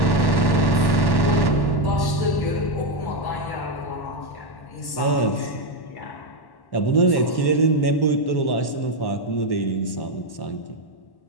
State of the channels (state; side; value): late; right; 1.1 ms